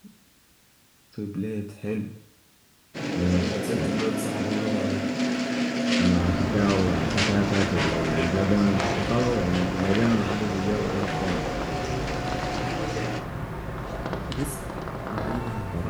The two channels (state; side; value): identical; both; correlation 1.00